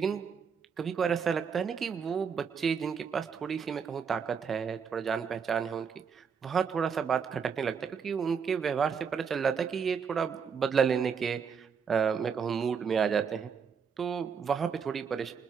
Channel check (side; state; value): left; quieter; 6.5 dB